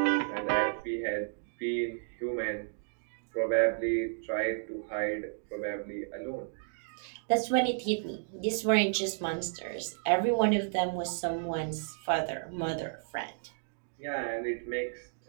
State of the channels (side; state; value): left; silent; digital silence